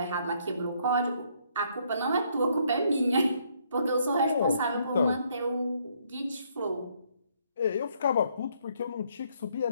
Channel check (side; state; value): both; inverted; correlation -0.69